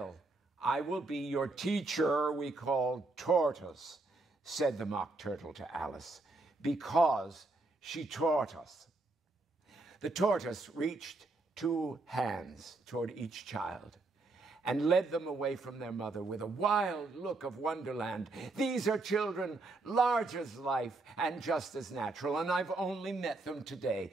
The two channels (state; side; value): quieter; left; 3.3 dB